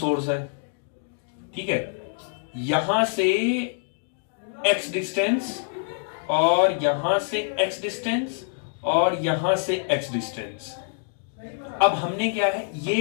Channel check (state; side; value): silent; right; digital silence